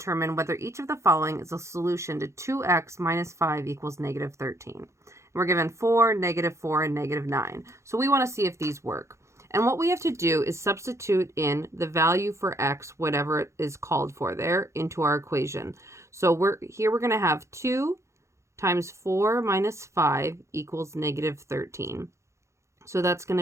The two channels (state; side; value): late; left; 0.14 ms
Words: whether each of the following is a solution to 2x minus 5 equals negative 13. We're given 4, -4, and -9. So we want to see if these work. And what we have to do is substitute in the value for x, whatever it is called for there, into our equation. So we're going to have 2 times 4 minus 5 equals negative 13. So that's going